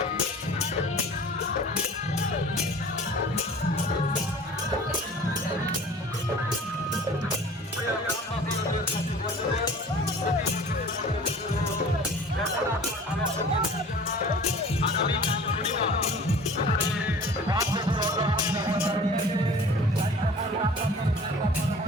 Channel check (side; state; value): both; normal; correlation 0.45